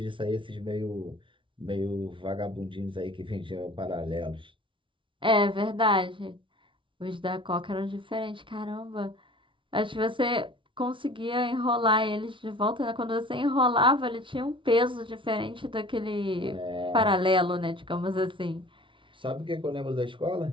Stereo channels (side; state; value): left; late; 0.25 ms